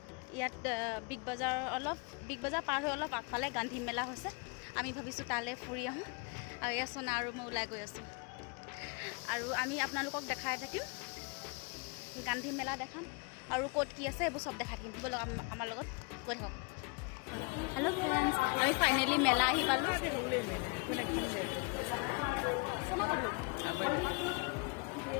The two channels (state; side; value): quieter; right; 31.8 dB